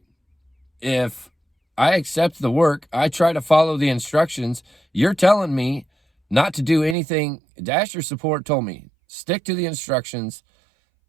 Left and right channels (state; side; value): drops out; left; at 7.0 s